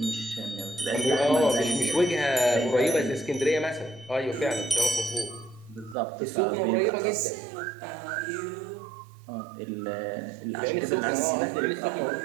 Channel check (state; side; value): drops out; left; at 6.0 s